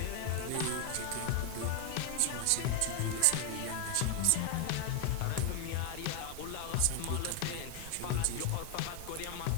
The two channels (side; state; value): both; different; correlation 0.01